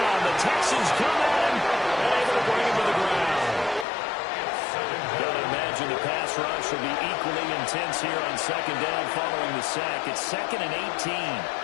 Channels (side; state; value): right; drops out; at 3.9 s